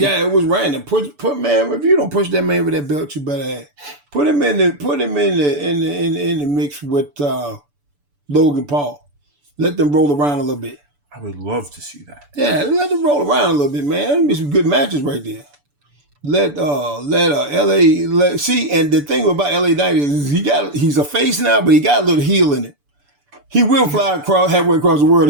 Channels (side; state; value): left; late; 6.9 ms